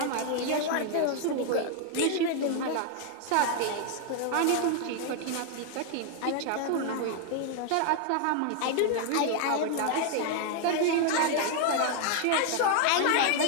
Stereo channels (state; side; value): different; both; correlation 0.00